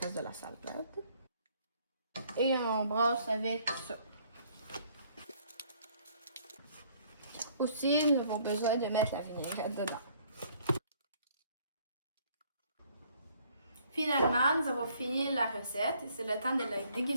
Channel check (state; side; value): inverted; both; correlation -0.62